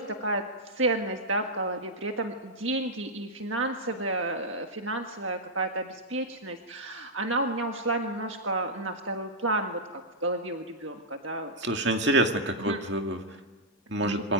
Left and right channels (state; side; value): normal; both; correlation -0.07